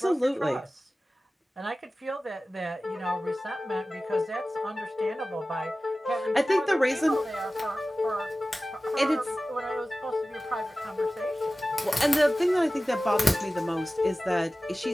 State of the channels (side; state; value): both; normal; correlation 0.96